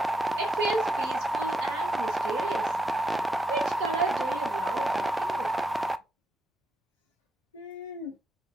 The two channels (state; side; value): normal; both; correlation 0.80